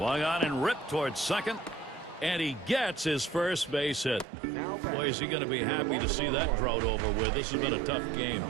on and ripped towards second. And he gets his first base hit. Boy, is he going to be happy to see that drought over with. This has been a tough game.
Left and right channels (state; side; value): drops out; left; at 4.2 s